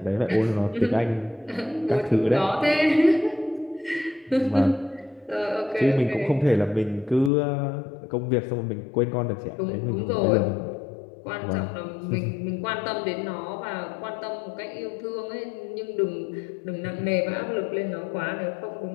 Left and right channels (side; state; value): right; drops out; at 7.3 s